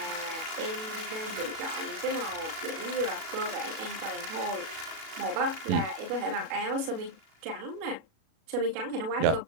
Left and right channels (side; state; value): left; late; 36 ms